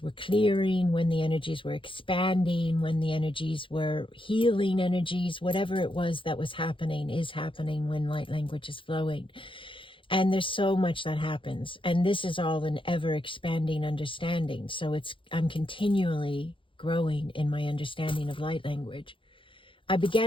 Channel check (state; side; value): late; right; 0.25 ms